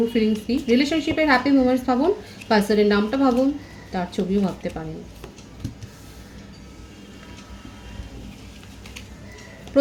ফিলিংস কী, রিলেশনশিপের হ্যাপি মোমেন্টস ভাবুন, পার্সনের নামটা ভাবুন, তার ছবিও ভাবতে পারেন।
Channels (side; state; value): both; identical; correlation 1.00